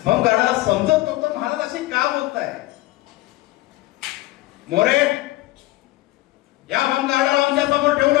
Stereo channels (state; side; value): quieter; right; 17.9 dB